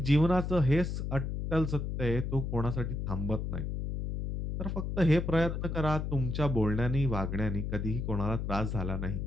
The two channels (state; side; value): noise; left; hum, 3 dB below the sound